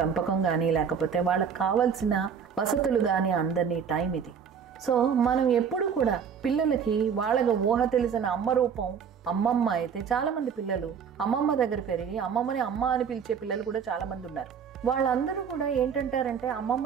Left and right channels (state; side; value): quieter; left; 7.0 dB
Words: కానీ లేకపోతే వాళ్ళకి కావాల్సిన వసతులు కానీ అందరినీ టైం ఇది. సో మనం ఎప్పుడు కూడా పిల్లలకి వాళ్ళకి ఊహ తెలిసిన అమ్మ రూపం అమ్మమ్మ అయితే చాలామంది పిల్లలు అమ్మమ్మ దగ్గర పెరిగి అమ్మమ్మని అమ్మ అని పిలిచే పిల్లలు కూడా చాలామంది ఉన్నారు. వాళ్ళందరూ కూడా ఏంటంటారంటే